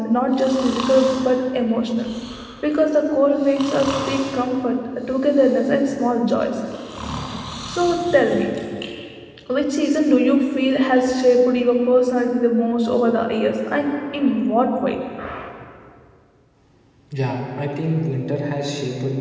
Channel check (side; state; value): both; identical; correlation 1.00